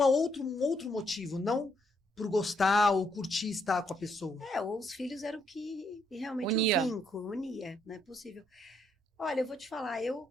motivo, não por gostar ou curtir estar com a pessoa. Ou os filhos eram que realmente Unia. o vínculo, unia, não é possível. Olha, eu vou te falar,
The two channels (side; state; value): both; normal; correlation 0.73